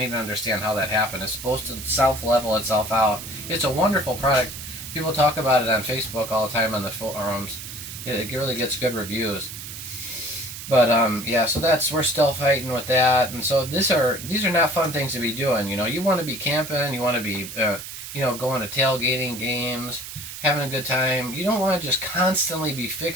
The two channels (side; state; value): right; noise; hiss, 10 dB below the sound